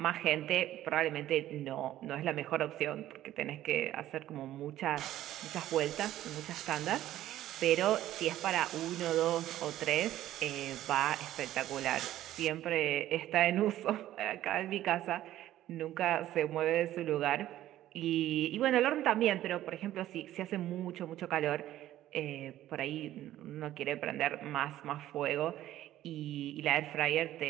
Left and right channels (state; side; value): quieter; left; 13.5 dB